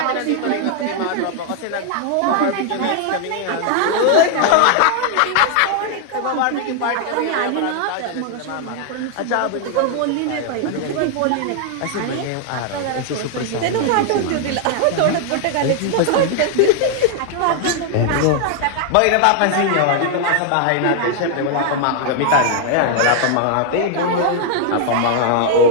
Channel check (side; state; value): both; different; correlation 0.00